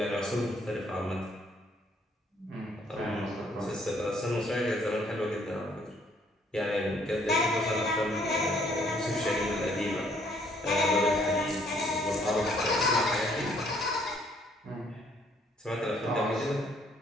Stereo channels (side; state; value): both; normal; correlation 0.64